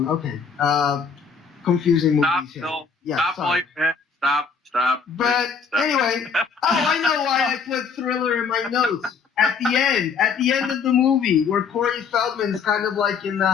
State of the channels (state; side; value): quieter; right; 5.8 dB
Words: Okay. Confusing movies here. Stop. But anyway, I know why I put Thriller in my notes. At the end of the movie, where Corey Feldman's kind of like in the